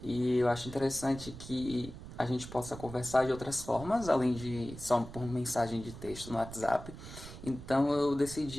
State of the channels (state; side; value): noise; right; rumble, 13 dB below the sound